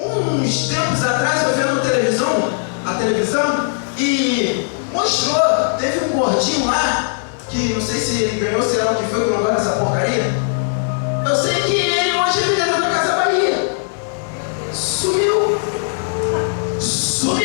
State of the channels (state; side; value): silent; right; digital silence